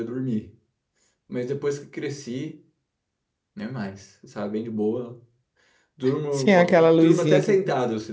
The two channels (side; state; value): both; identical; correlation 1.00